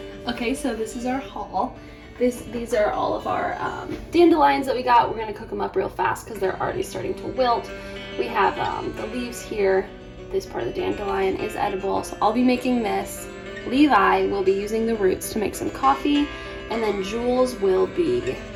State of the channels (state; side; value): identical; both; correlation 1.00